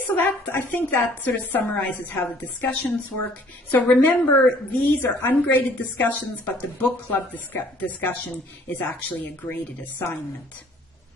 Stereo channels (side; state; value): both; normal; correlation 0.57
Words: so I think that sort of summarizes how the discussions work. So remember, these are ungraded discussions, but the book club discussion is actually a graded assignment.